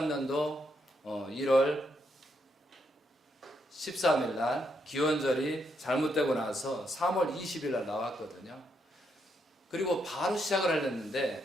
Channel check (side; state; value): both; normal; correlation 0.78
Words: 1월 13일 날 기원절이 잘못되고 나서 3월 20일 날 나왔거든요. 그리고 바로 시작을